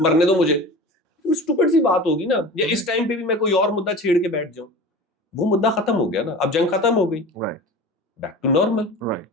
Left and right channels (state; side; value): normal; both; correlation 0.35